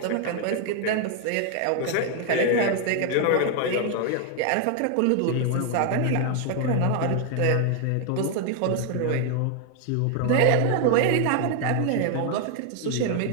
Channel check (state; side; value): different; both; correlation 0.01